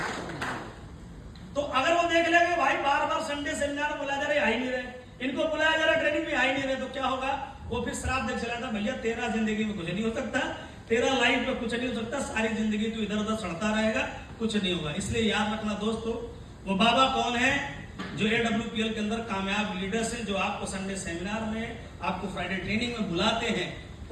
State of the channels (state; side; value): identical; both; correlation 1.00